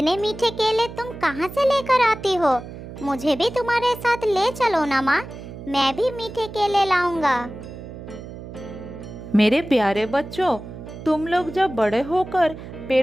मीठे केले तुम कहाँ से लेकर आती हो? मुझे भी तुम्हारे साथ ले चलो ना माँ, मैं भी मीठे केले लाऊंगा। मेरे प्यारे बच्चों, तुम लोग जब बड़े होकर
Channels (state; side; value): noise; right; hum, 12 dB below the sound